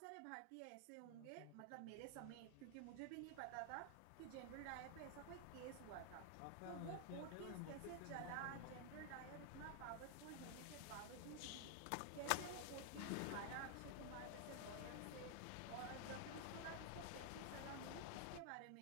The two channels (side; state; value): both; different; correlation 0.00